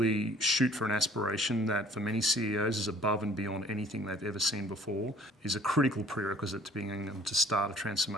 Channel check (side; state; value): both; normal; correlation 0.54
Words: shoot for an aspiration that for many CEOs is above and beyond anything they've ever seen before is a critical prerequisite to being able to start a